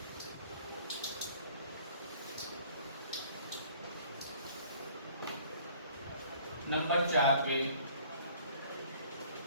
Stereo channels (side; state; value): both; inverted; correlation -0.54